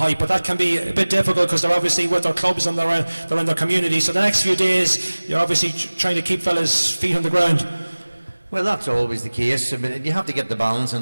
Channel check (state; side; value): inverted; both; correlation -1.00